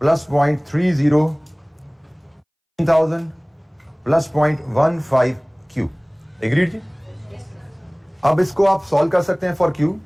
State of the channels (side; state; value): both; identical; correlation 1.00